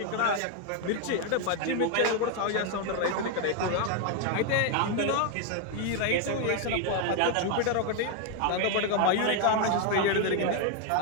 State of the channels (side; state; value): both; different; correlation 0.00